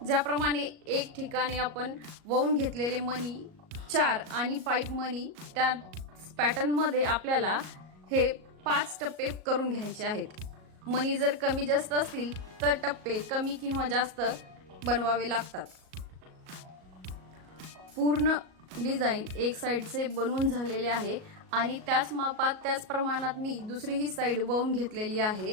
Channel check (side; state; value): left; late; 38 ms